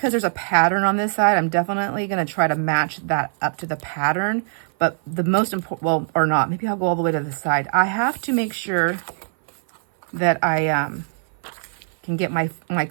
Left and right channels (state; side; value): silent; left; 57 dB below the other